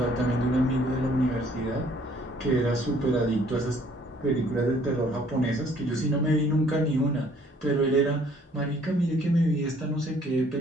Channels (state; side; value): normal; both; correlation 0.60